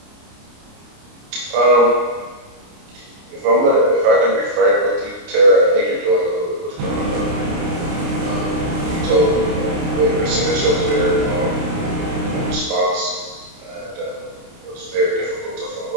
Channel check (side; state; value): left; late; 29 ms